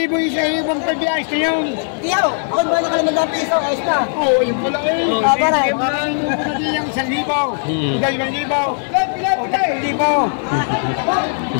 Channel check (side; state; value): right; silent; digital silence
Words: isa yung pag-ayos na yun. Tiyaw, ako ba na ka naman ng piso, ayos na. Oo, yung pala eh. Paray. Parang yung pala din yung 1,000. 2,000. O 3,000.